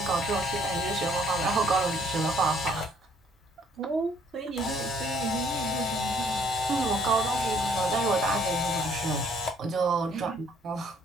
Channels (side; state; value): both; normal; correlation 0.63